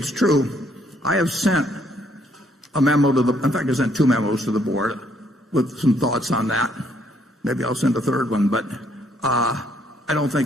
true. I have sent a memo in fact, I sent 2 memos to the board with some thoughts on that. Maybe I'll send a third one, but I don't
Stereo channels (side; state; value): both; normal; correlation 0.69